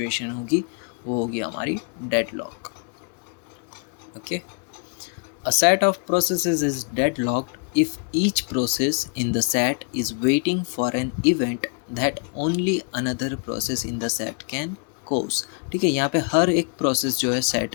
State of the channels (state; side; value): quieter; right; 38.1 dB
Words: होगी वो होगी हमारी deadlock, okay. A set of processes is deadlocked if each process in the set is waiting for an event that only another process in the set can cause, ठीक है। यहाँ पे हर एक प्रोसेस जो है सेट